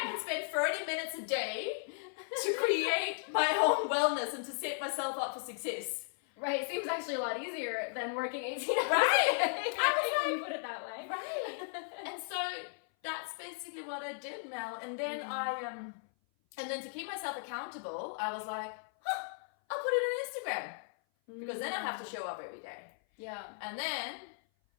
can spend 30 minutes a day to create my own wellness and to set myself up for success. Right, seems actually a lot easier than working 18 hours. Right, when you put it that way. Right, and so that's basically what I did, Mel. And then and then to keep myself accountable, I was like, I'll put it on Instagram because then I have to show up every day. Yeah. And then,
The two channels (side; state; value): right; silent; 54 dB below the other